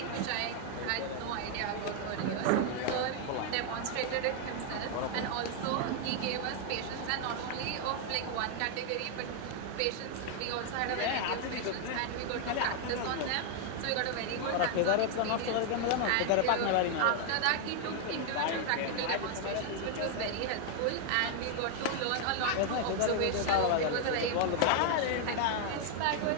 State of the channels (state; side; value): different; both; correlation 0.00